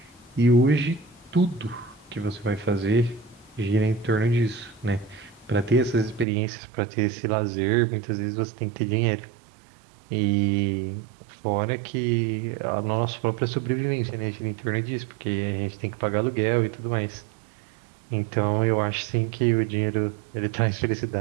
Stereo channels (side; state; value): left; drops out; at 6.2 s